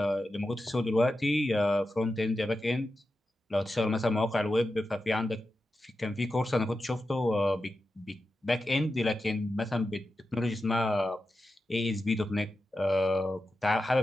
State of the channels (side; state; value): both; normal; correlation 0.91